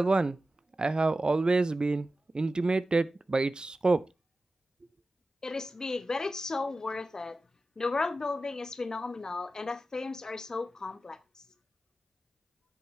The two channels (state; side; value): normal; both; correlation 0.94